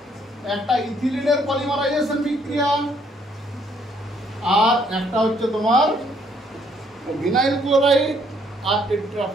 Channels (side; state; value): both; normal; correlation 0.67